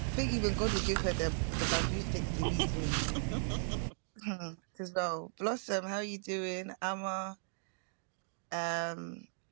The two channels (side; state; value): left; silent; digital silence